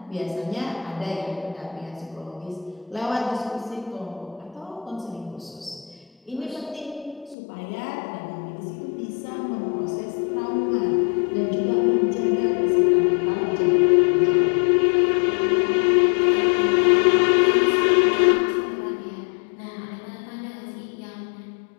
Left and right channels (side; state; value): right; drops out; at 7.4 s